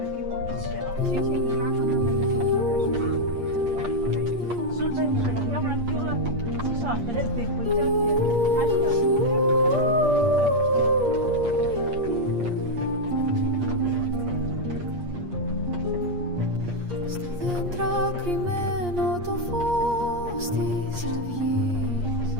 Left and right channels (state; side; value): late; left; 8.5 ms